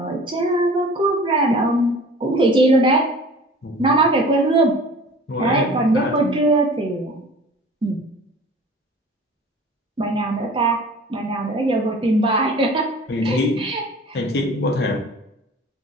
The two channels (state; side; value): normal; both; correlation 0.44